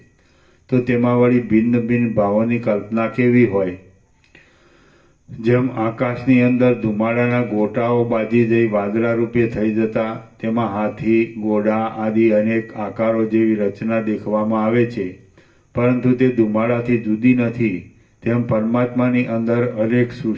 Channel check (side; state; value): both; identical; correlation 1.00